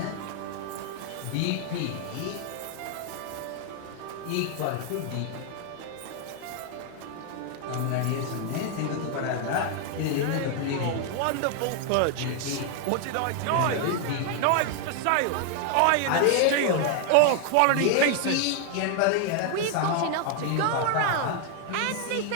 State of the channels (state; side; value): different; both; correlation 0.00